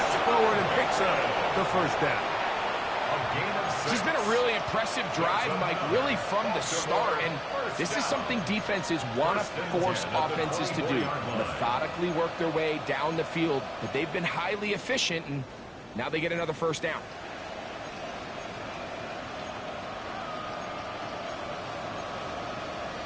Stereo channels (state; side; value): identical; both; correlation 1.00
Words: forward and picks up the first down. This has been a really impressive drive, Mike, really from the start. And this is something defenses want to force offenses to do. Methodically work their way down the field. But they've been highly efficient, and now they get another first down.